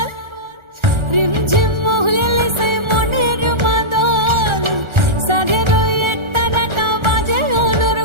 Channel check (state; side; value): late; left; 1.4 ms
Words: রিমঝিম মহুলিলে সে মনের মাদল, সাধের এক তারাটা বাজে